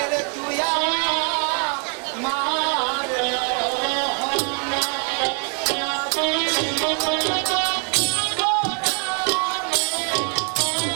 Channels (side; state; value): left; quieter; 38.2 dB